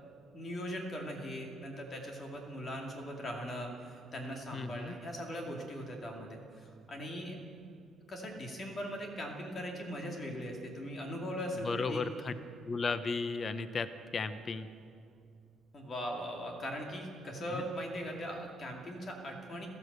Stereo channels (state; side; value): normal; both; correlation 0.76